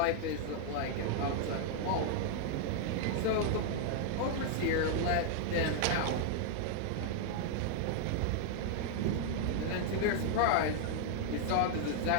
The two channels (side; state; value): both; different; correlation 0.00